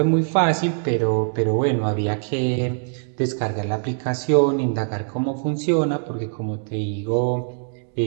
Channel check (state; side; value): silent; left; digital silence